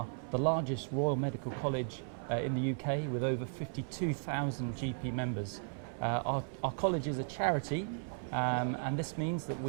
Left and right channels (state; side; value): silent; left; 54 dB below the other